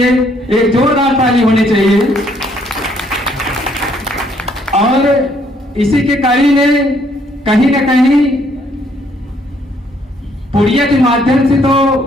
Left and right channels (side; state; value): both; normal; correlation 0.67